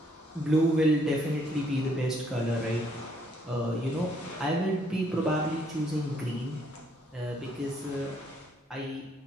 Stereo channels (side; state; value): both; normal; correlation 0.68